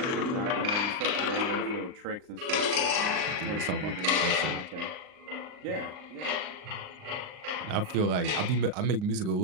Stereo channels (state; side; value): late; left; 39 ms